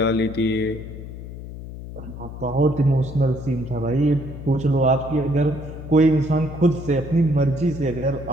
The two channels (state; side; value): noise; left; hum, 11 dB below the sound